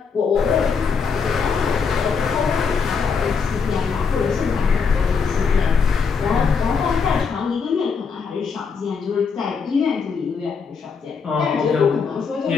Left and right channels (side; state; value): right; quieter; 5.6 dB